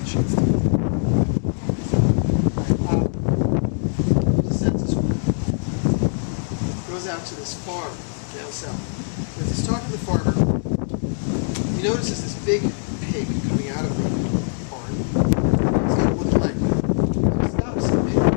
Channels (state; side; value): silent; right; digital silence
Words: chance to the census worker goes out to this farm down south. As he's talking to the farmer, he notices this big pig coming out of the barn. He's got a wooden leg. He stops and